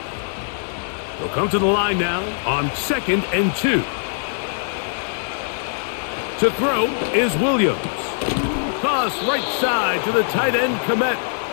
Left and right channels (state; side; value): silent; right; digital silence